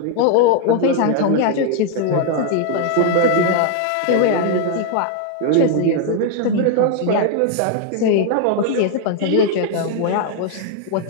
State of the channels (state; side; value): different; both; correlation 0.00